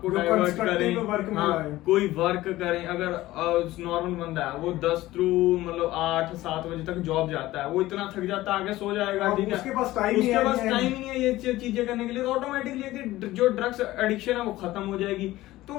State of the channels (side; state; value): right; quieter; 16.8 dB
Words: को डाइवर्ट करें, कोई वर्क करें। अगर नॉर्मल बंदा है वो 10 थ्रू मतलब 8-7 बजे तक जॉब जाता है, वो इतना थक जाता है आगे सो जाएगा, ठीक है, उसके पास टाइम ही नहीं है ये चीजें करने के लिए। तो ऑटोमेटिकली जो ड्रग्स एडिक्शन है वो खत्म हो जाएगी। तो